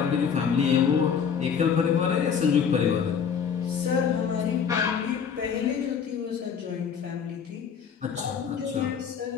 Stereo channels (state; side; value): quieter; right; 7.1 dB